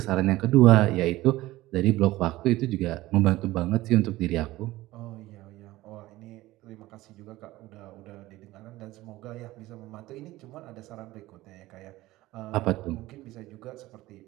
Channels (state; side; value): quieter; left; 17.7 dB